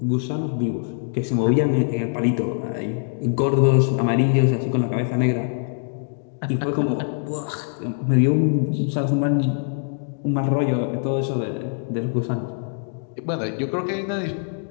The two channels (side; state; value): right; silent; digital silence